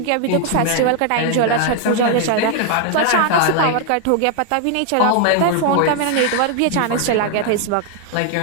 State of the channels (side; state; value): both; different; correlation 0.00